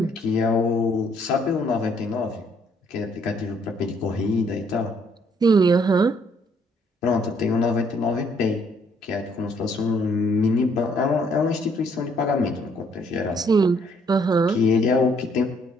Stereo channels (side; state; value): both; normal; correlation 0.67